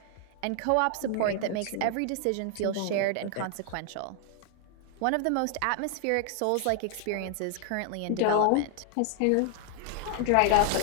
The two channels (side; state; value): both; different; correlation 0.00